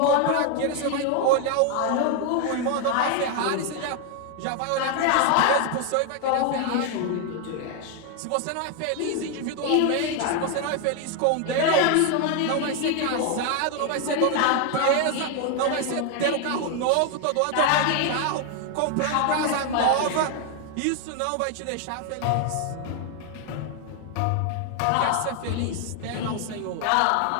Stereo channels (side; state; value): both; different; correlation 0.01